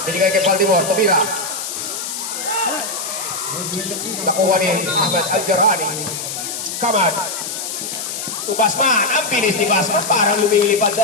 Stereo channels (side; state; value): left; noise; hiss, 5 dB below the sound